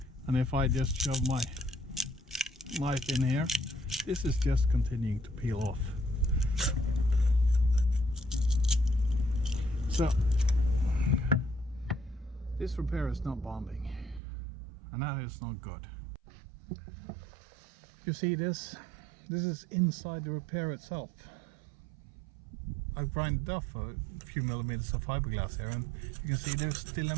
and if I just shove my knife in here, this is just continuing to peel off. So this repair is not bonding, and that is not good. You see this is inside the repair itself. I've grinded off a few millimeters of fiberglass here, and you can see there's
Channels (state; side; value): drops out; left; at 14.2 s